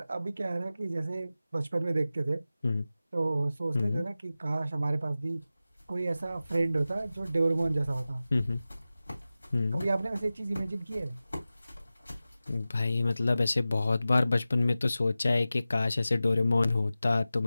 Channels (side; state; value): both; inverted; correlation -0.95